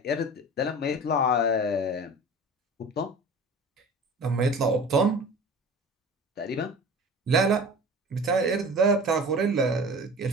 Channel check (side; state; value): both; normal; correlation 0.38